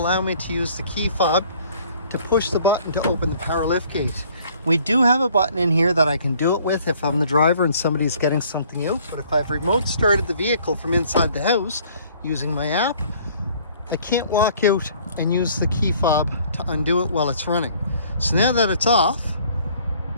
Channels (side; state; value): both; inverted; correlation -0.57